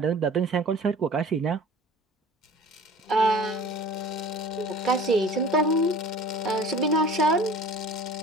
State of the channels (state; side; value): normal; both; correlation 0.43